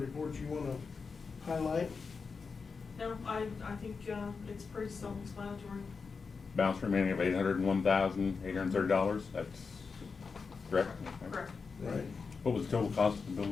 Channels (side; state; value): right; quieter; 5.0 dB